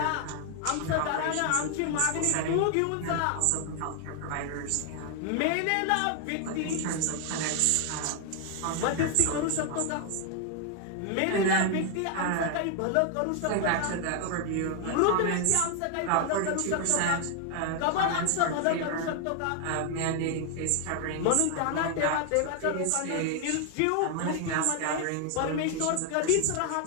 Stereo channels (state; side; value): different; both; correlation 0.00